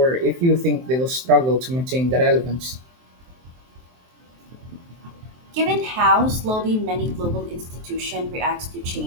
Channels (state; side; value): late; left; 23 ms